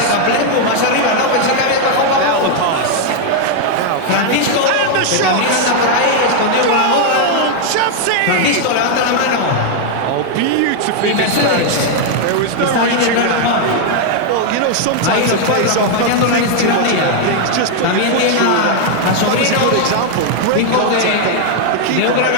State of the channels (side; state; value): both; different; correlation 0.00